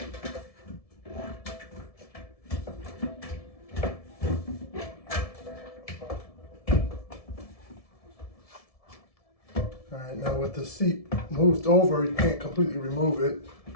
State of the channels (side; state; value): right; late; 1.7 ms